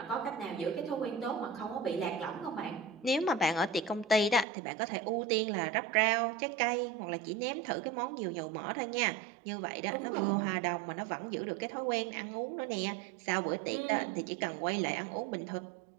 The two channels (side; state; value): left; drops out; at 4.5 s